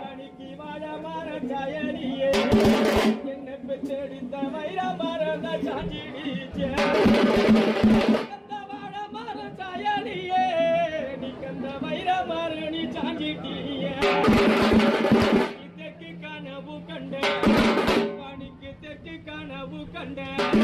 வாழ மர சாயலியே என்ன பெற்றெடுத்த வைர மரத சாஞ்சிடிச்சே அந்த வாழ மர சாயலியே நீ கந்த வைர மரணி சாஞ்சிட்டியே தெற்கு கனவு கண்ட பணிக்கு தெற்கு கனவு கண்ட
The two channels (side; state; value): both; identical; correlation 1.00